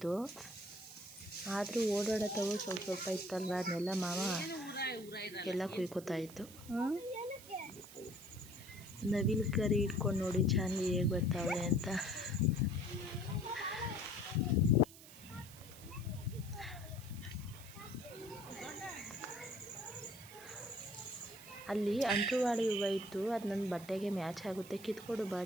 ಆದರೂ ಓಡಾಡತ್ತವು ಸ್ವಲ್ಪ ಸ್ವಲ್ಪ ಇತ್ತಲ್ವ, ಅದನ್ನೆಲ್ಲ ಮಾವ ಎಲ್ಲ ಕುಯ್ಕೋತಾ ಇತ್ತು. ನವಿಲು ಕರಿ ಇಟ್ಕೊಂಡು ನೋಡಿ ಚಾಂದಿ ಹೇಗೆ ಬರ್ತಾವೆ ಅಂತ. ಅಲ್ಲಿ ಅಂಟುವಾಡಿ ಹೂವು ಇತ್ತು, ಅದು ನನ್ನ ಬಟ್ಟೆಗೆ ಮ್ಯಾಚ್ ಆಗುತ್ತೆ, ಕಿತ್ಕೊಡು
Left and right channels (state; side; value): noise; right; hiss, 17 dB below the sound